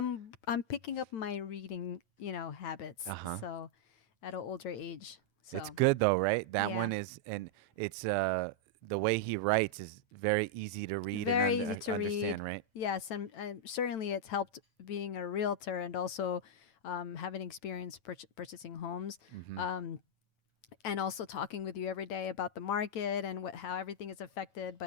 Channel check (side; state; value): right; late; 9.0 ms